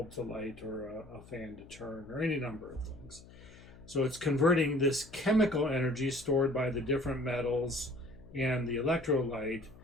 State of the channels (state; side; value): noise; left; hum, 20 dB below the sound